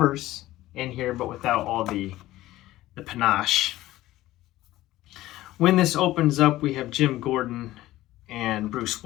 in here, but without all the panache. When this opens up, we have Jim Gordon and Bruce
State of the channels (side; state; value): right; quieter; 16.0 dB